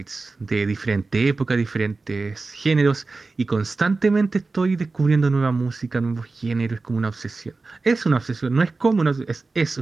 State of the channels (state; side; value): quieter; left; 3.7 dB